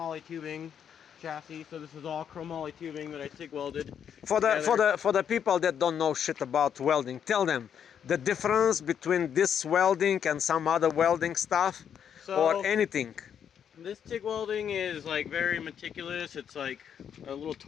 tubing chassis. So this is all chromoly tubing that I TIG welded. For the people that don't know shit about welding, tell them the difference between this welding and some other welding stuff, or anything. This TIG welding is like very meticulous. It's like a little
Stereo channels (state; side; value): quieter; right; 8.4 dB